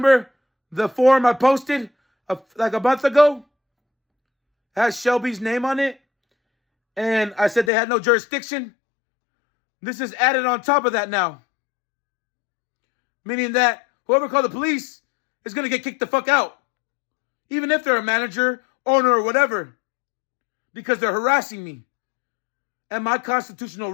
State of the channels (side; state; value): right; drops out; at 7.7 s